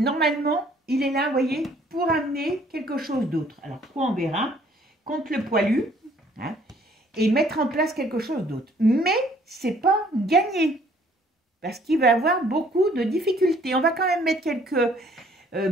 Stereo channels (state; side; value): normal; both; correlation 0.60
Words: il est là, vous voyez, pour amener quelque chose d'autre. Alors, quoi on verra? contre le poilu, hein, et mettre en place quelque chose d'autre. Mais c'est pas gagné, parce qu'il va avoir beaucoup de difficultés. On va quand même mettre quelques